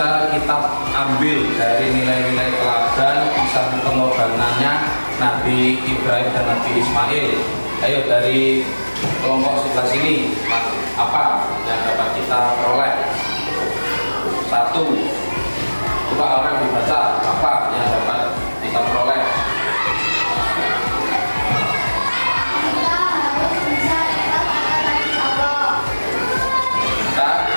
kita ambil dari nilai-nilai teladan kisah pengorbanannya Nabi Ibrahim dan Nabi Ismail? Ayo dari kelompok sebelah sini, apa yang dapat kita peroleh? Satu, coba orang dibaca apa yang dapat kita peroleh? Kita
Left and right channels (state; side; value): inverted; both; correlation -1.00